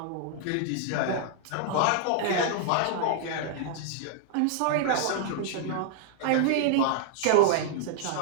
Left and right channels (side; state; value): both; different; correlation 0.00